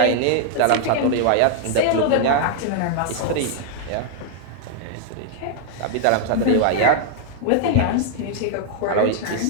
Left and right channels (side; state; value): both; different; correlation 0.00